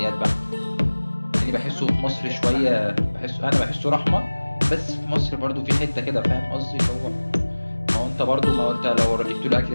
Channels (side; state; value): both; inverted; correlation -1.00